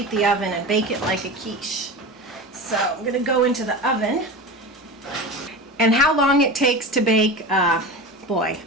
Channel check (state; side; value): normal; both; correlation 0.28